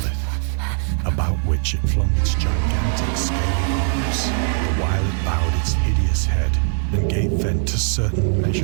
about which it flung its gigantic scaly arms, the while it bowed its hideous head and gave vent to certain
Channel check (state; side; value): silent; left; 61 dB below the other